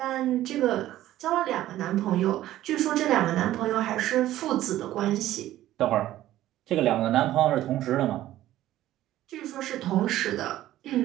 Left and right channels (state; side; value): quieter; left; 14.1 dB